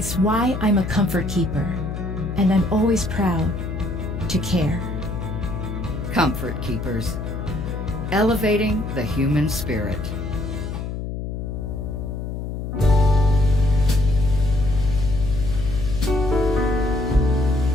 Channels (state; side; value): noise; left; hum, 5 dB below the sound